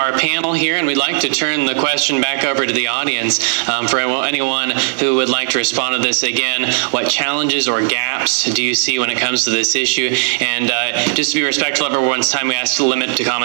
panel here, and we'd like to turn the question back over to the audience for anyone who would like to respond to this again. What challenges or gaps do you see when it comes to this issue? And just to be respectful of everyone's time, we ask to limit to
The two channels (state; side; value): silent; left; digital silence